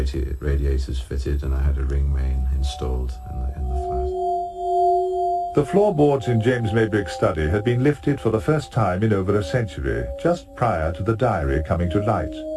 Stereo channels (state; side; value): identical; both; correlation 1.00